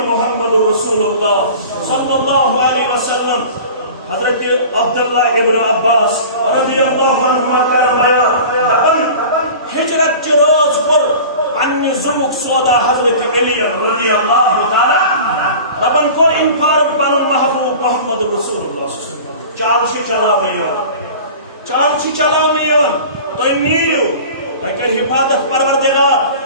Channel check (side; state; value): both; inverted; correlation -0.39